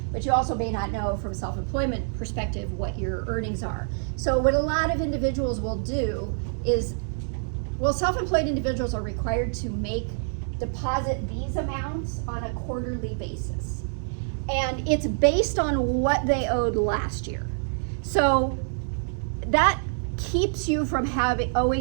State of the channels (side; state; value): left; silent; digital silence